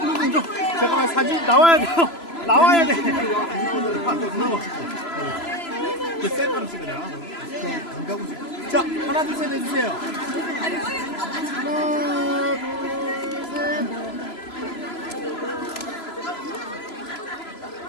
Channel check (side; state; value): right; late; 3.0 ms